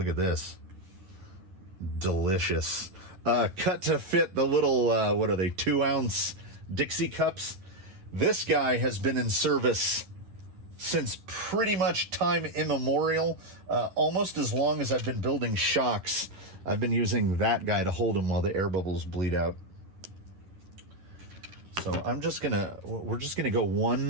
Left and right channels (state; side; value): late; left; 10 ms